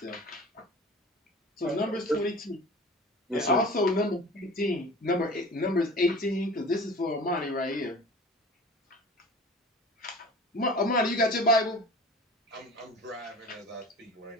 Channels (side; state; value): both; normal; correlation 0.40